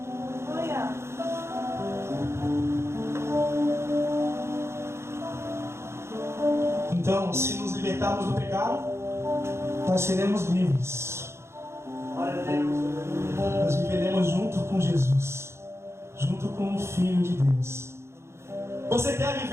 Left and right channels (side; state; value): left; late; 0.13 ms